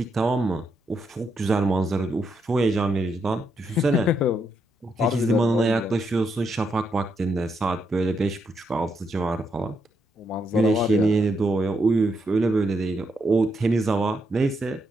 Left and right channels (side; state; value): both; normal; correlation 0.79